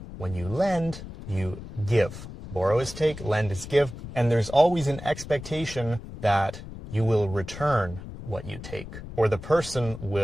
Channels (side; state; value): left; noise; rumble, 12 dB below the sound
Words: When you lend, you give. Borrow is take, lend is give, and there's always an expectation that you will return what you take, or the person